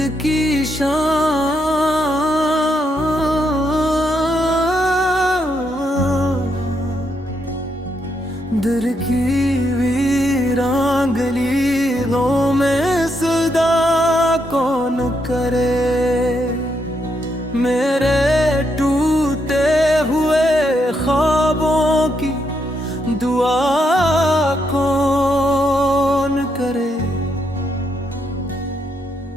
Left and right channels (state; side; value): normal; both; correlation 0.79